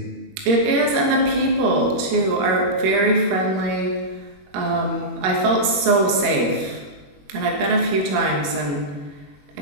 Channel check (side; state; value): left; late; 21 ms